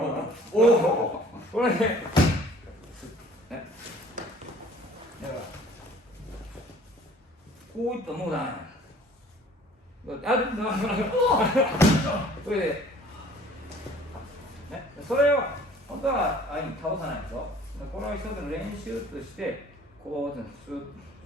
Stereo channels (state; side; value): normal; both; correlation 0.52